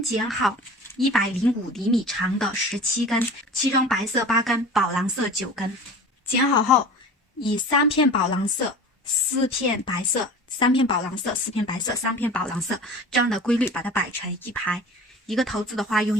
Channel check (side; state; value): both; normal; correlation 0.38